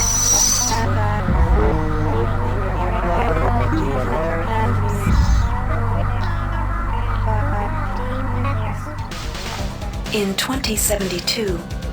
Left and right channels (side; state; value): both; identical; correlation 1.00